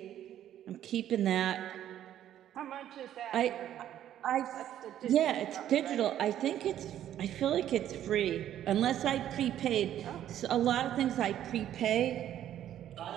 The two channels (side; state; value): left; quieter; 11.4 dB